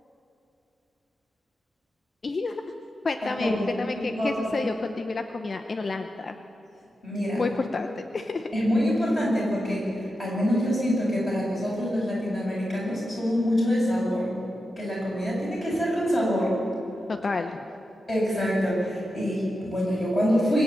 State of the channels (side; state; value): both; normal; correlation 0.89